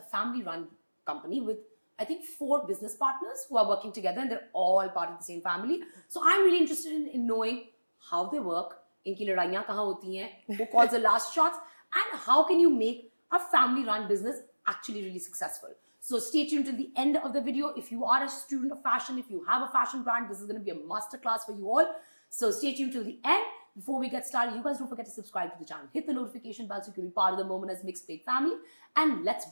family-run company with I think 4 business partners who are working together and they're all part of the same family. So I'm really interested in knowing how they work, inki ladaiyan kahan hoti hain, who calls the last shots, and how can you make a family-run business actually really successful. So stay tuned till the end of the video. If you are a student of fashion, if you have a fashion brand, this is going to be a masterclass for you all. So stay tuned till the end. Before we get started, you guys don't forget to subscribe to the channel. Hit the notification bell so you can be part of the Momina's Mixtape family. And let's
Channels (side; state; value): both; inverted; correlation -1.00